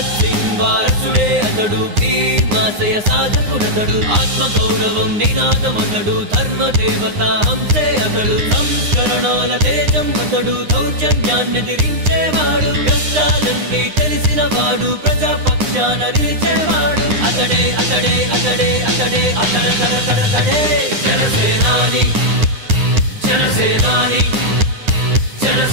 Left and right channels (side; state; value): left; late; 9.7 ms